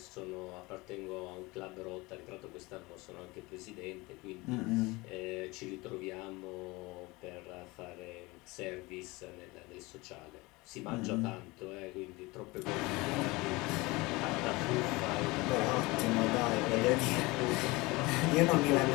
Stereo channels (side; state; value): right; quieter; 23.1 dB